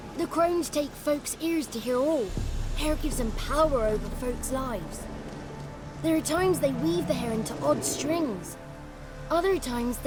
The crones take folks' ears to hear all. Hair gives them power over folks' lives. There are times they weave the hair into odd strings. Other times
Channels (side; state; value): both; identical; correlation 1.00